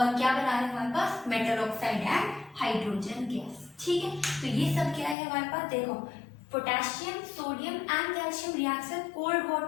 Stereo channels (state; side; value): drops out; right; at 5.2 s